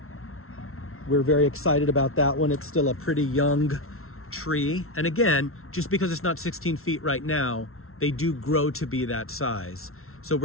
We're very excited about that one. It's still a pretty young tree. And again, just because it's not 16 feet right now, they do grow to be that size. So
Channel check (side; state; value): right; late; 0.62 ms